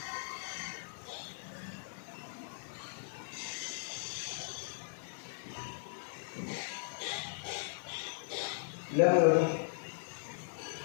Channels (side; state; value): right; silent; digital silence